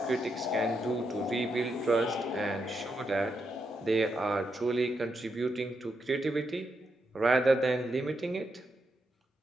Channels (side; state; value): both; normal; correlation 0.82